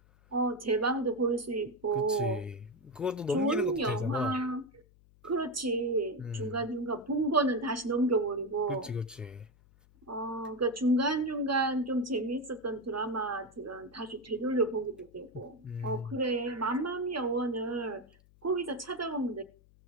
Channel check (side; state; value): left; noise; hum, 28 dB below the sound